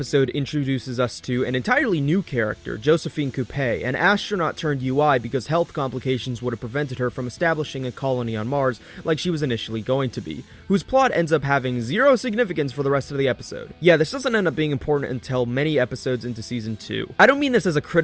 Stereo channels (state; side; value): identical; both; correlation 1.00